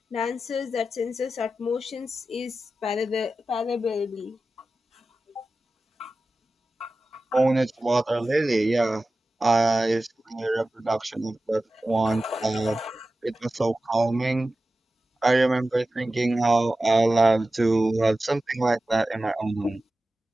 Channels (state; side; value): normal; both; correlation 0.94